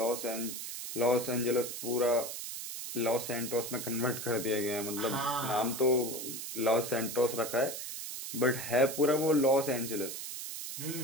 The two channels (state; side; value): noise; right; hiss, 7 dB below the sound